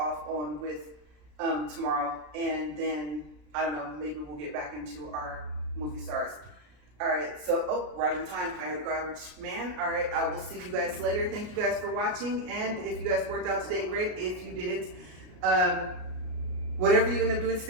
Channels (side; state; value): left; late; 33 ms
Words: on with tomorrow. And then, I don't know, maybe we'll get back into our movie stars. All right, so, oh, right on time. I got a garbage man. All right, I will see you guys later. Thank you guys for watching. And if you guys worked out today, great. If you didn't, whatever you end up doing